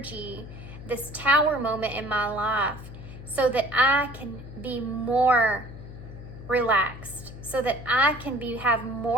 this tower moment in my life so that I can be more relaxed, so that I can have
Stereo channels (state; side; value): noise; left; hum, 13 dB below the sound